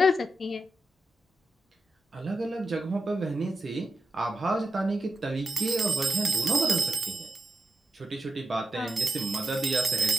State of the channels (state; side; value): normal; both; correlation 0.89